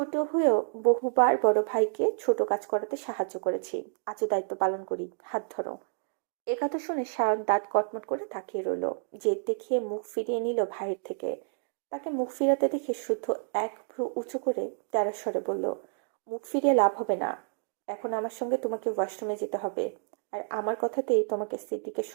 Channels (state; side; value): silent; left; digital silence